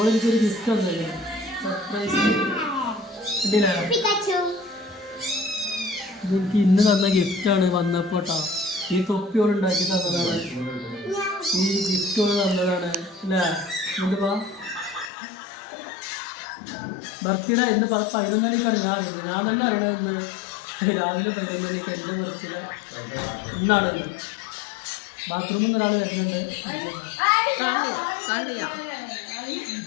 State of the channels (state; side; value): drops out; right; at 15.1 s